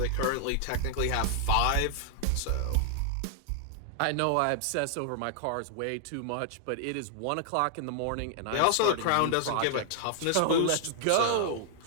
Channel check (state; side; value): different; both; correlation 0.00